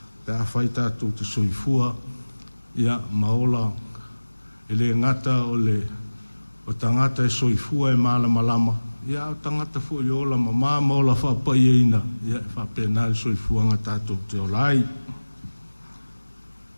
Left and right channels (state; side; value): inverted; both; correlation -1.00